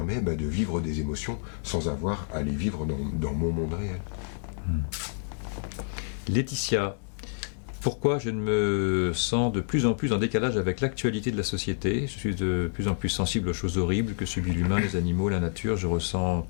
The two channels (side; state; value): right; silent; digital silence